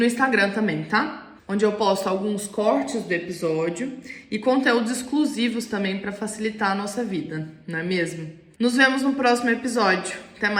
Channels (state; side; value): identical; both; correlation 1.00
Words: Instagram também, tá? Onde eu posto alguns cortes do episódio e conteúdos exclusivos também para facilitar a nossa vida, não é mesmo? Nos vemos no próximo episódio. Até